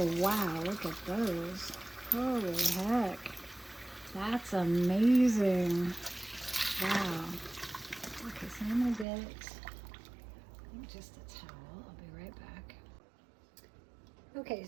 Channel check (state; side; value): drops out; left; at 9.1 s